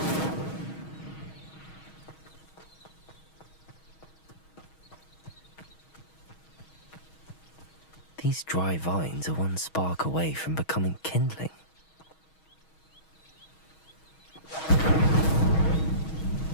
These dry vines are one spark away from becoming kindling.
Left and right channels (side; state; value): right; late; 6.3 ms